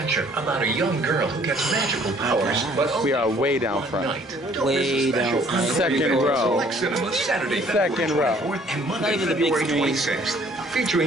about a young girl who gets magical powers, but We are way down front. Way down front. Second row. Select Cinema, Saturday, Second row. February 24th and Not Monday, even the big February screen. 26th,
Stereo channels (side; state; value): both; normal; correlation 0.59